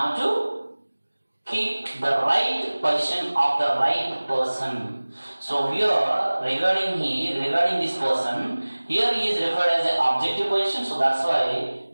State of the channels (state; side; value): inverted; both; correlation -1.00